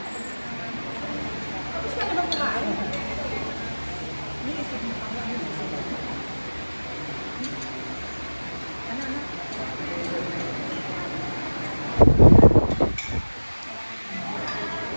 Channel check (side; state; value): both; inverted; correlation -1.00